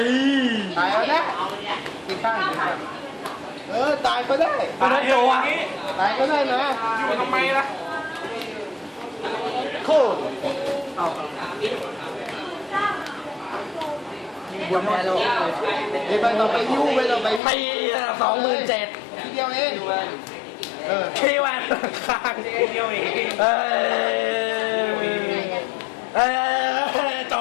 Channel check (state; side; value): drops out; right; at 17.4 s